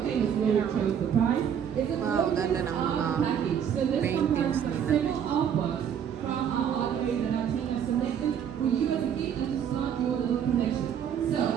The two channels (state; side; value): quieter; left; 8.5 dB